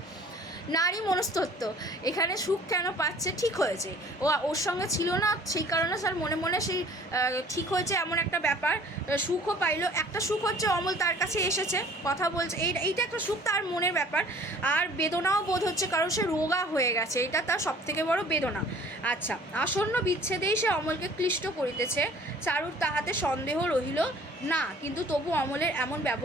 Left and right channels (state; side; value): normal; both; correlation 0.52